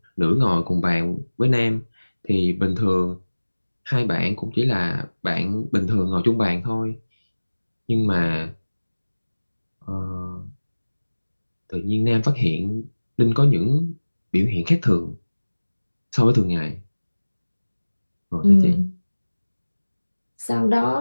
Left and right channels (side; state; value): both; inverted; correlation -1.00